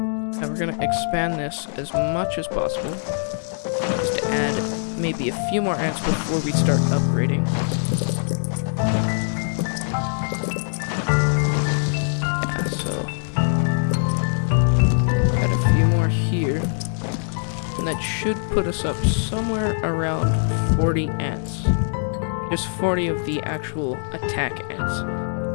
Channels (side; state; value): right; silent; digital silence